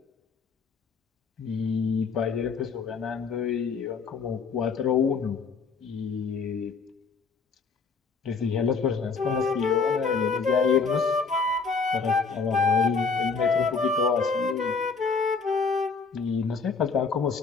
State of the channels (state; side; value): quieter; right; 5.0 dB